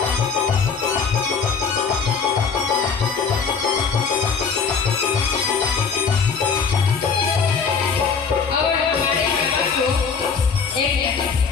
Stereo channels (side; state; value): right; quieter; 5.8 dB